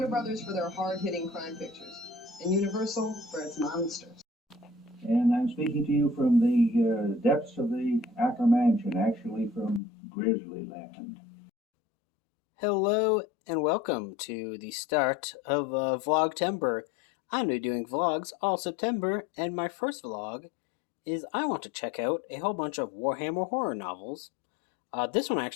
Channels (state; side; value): drops out; right; at 9.8 s